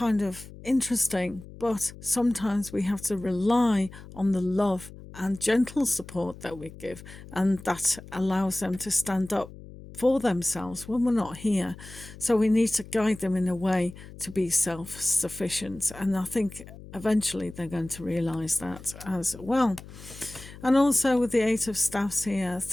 of interesting, but sometimes we have to rely on the love and gentle support that we give, and that allows them to stand up for themselves when we're not here. So we need to guide them in a way to be self sufficient. And I think eventually they're going to realize that as well. And also with the Eight of Staffs here,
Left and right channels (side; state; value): left; noise; hum, 16 dB below the sound